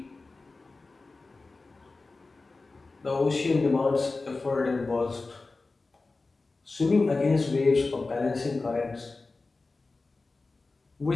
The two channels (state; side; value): quieter; right; 3.6 dB